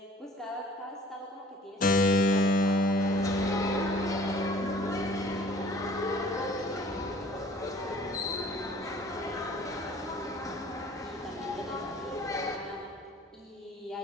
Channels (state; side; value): normal; both; correlation 0.51